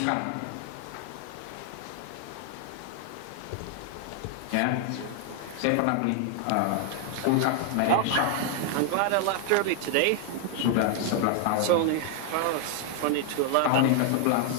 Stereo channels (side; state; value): both; different; correlation 0.00